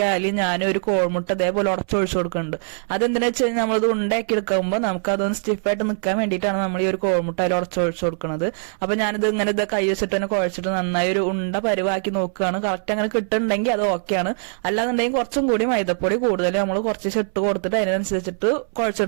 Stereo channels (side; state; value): left; silent; 64 dB below the other